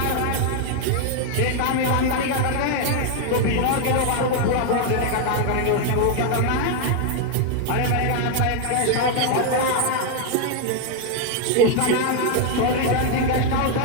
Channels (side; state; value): both; different; correlation 0.00